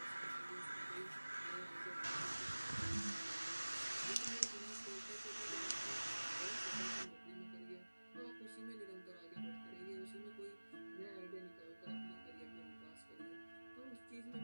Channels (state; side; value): inverted; both; correlation -1.00